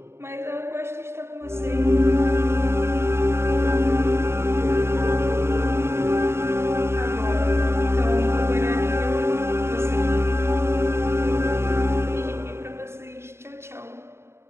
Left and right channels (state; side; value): late; left; 0.12 ms